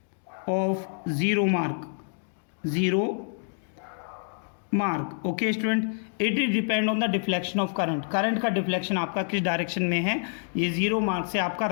of zero mark. Okay student, it is depend on the deflection of current. Current का deflection आपका किस direction में है, ये zero mark से आपका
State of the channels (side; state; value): right; silent; digital silence